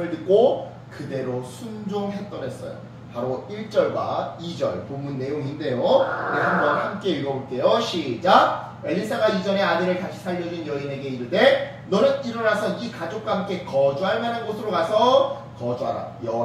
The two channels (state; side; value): identical; both; correlation 1.00